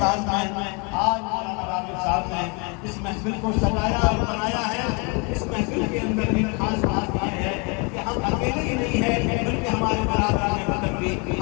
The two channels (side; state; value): right; quieter; 32.4 dB